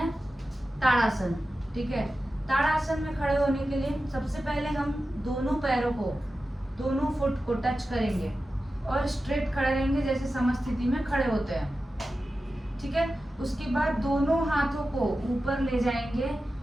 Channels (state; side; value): normal; both; correlation 0.93